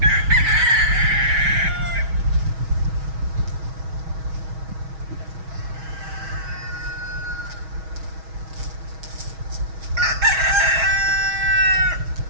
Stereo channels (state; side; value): late; left; 6.3 ms